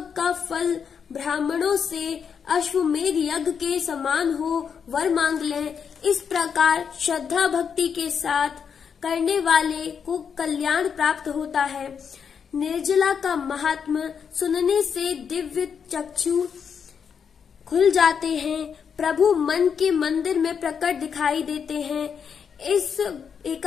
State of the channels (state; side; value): quieter; right; 6.9 dB